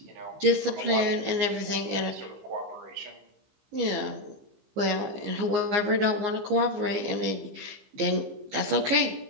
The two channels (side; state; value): left; late; 15 ms